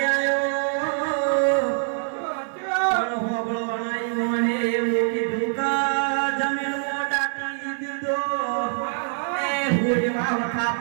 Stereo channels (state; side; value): silent; left; digital silence